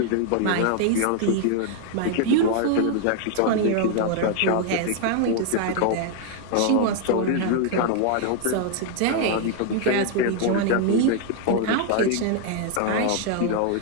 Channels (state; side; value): different; both; correlation 0.00